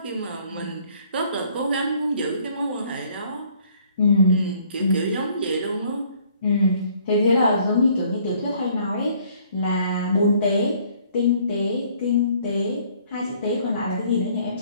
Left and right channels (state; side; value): inverted; both; correlation -0.60